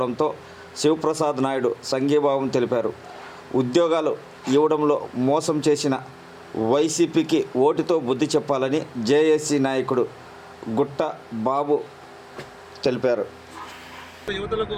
శివప్రసాద్ నాయుడు సంఘీభావం తెలిపారు. ఉద్యోగాలు ఇవ్వడంలో మోసం చేసిన వైసీపీకి ఓటుతో బుద్ధి చెప్పాలని జేఏసీ నాయకుడు గుట్ట బాబు తెలిపారు. యువతులకు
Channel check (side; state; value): both; identical; correlation 1.00